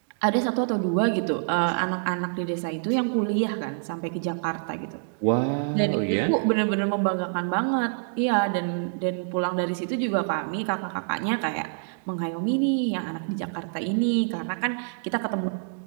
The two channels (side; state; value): left; silent; digital silence